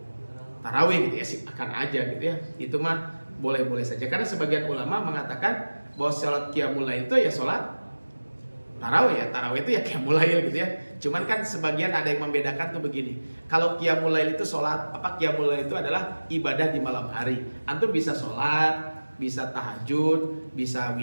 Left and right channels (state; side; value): inverted; both; correlation -1.00